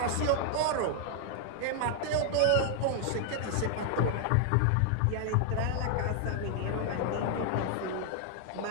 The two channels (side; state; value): both; different; correlation 0.00